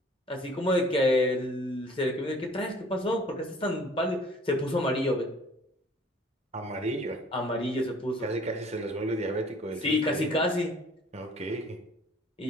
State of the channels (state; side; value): normal; both; correlation 0.53